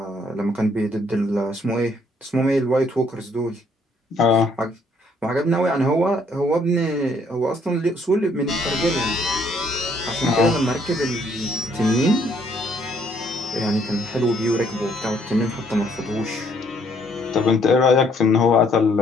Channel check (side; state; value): both; normal; correlation 0.66